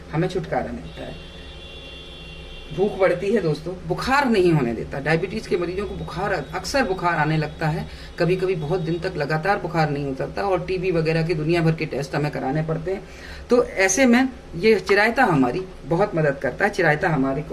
हमें छुटकारा मिलता है। भूख बढ़ती है दोस्तों, बुखार नहीं होने देता। डायबिटीज के मरीजों को बुखार, अक्सर बुखार आने लगता है, कभी कभी बहुत दिन तक लगातार बुखार नहीं उतरता और टीबी वगैरह के दुनिया भर के टेस्ट हमें कराने पड़ते हैं। तो ऐसे में ये चिरायता हमारी बहुत मदद करता है। चिरायता हमारे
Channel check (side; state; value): both; identical; correlation 1.00